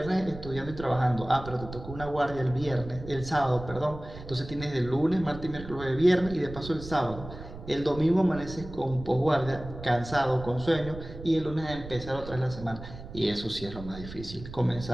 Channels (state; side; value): noise; right; rumble, 13 dB below the sound